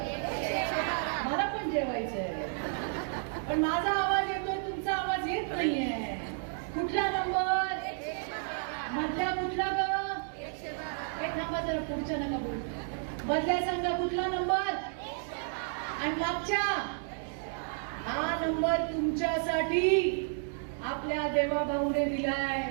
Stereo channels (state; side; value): silent; left; 57 dB below the other